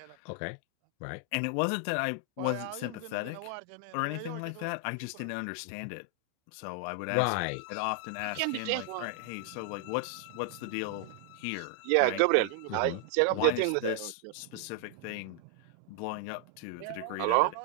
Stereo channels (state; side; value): different; both; correlation 0.00